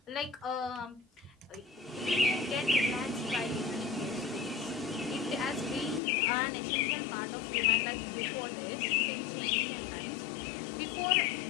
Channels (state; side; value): drops out; right; at 6.0 s